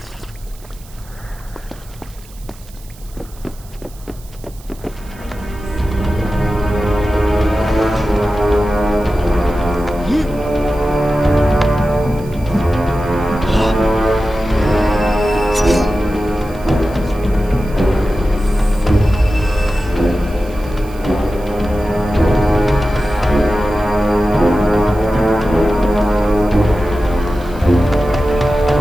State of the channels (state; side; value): noise; right; hiss, 24 dB below the sound